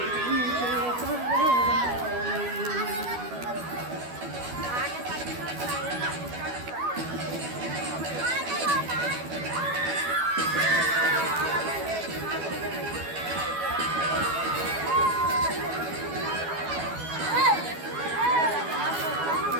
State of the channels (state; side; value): late; left; 12 ms